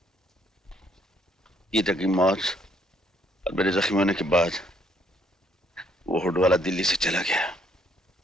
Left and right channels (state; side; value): normal; both; correlation 0.68